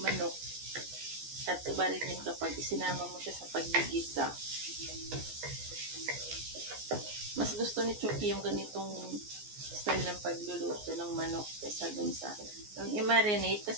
At iba rin yun kapag isinama mo siya sa paggigisa. Mas gusto ni Chucky yung ganitong style ng pagluluto ng manok kaysa dun sa yung i-marinate.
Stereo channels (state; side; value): late; left; 14 ms